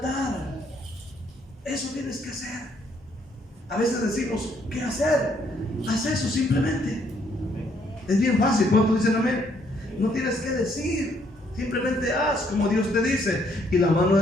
Eso tienes que hacer. A veces decimos, ¿qué hacer? Haz eso simplemente. Es bien fácil. ¿Cuántos dicen amén? No tienes que decir, simplemente haz como Dios te dice y la mano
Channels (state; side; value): normal; both; correlation 0.69